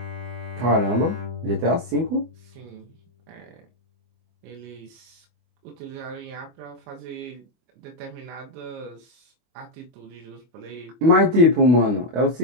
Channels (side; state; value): left; late; 24 ms